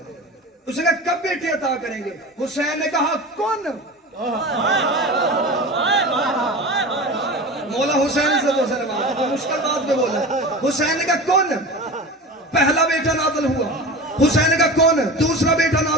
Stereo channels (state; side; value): normal; both; correlation 0.32